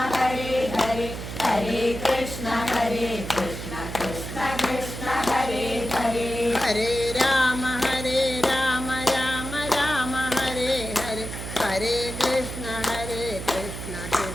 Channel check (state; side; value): noise; right; hum, 8 dB below the sound